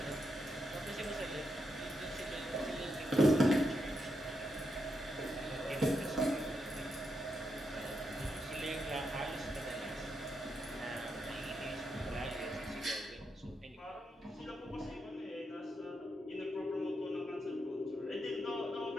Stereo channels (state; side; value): normal; both; correlation 0.83